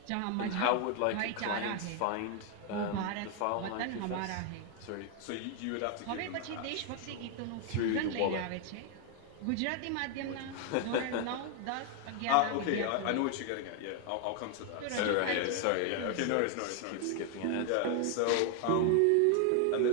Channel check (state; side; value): different; both; correlation 0.00